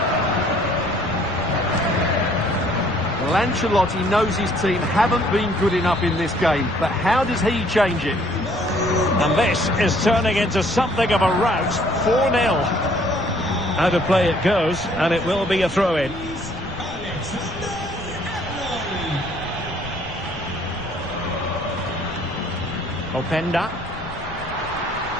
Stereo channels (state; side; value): noise; left; rumble, 19 dB below the sound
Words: Well, Ancelotti knows his team haven't been good enough in this game, but how does he change it? And this is turning into something of a rout. 4-0. Out of play it goes, and it will be a throw-in. Openda.